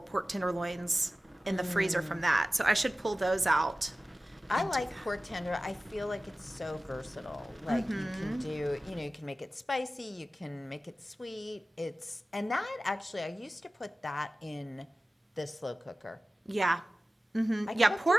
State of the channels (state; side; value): normal; both; correlation 0.96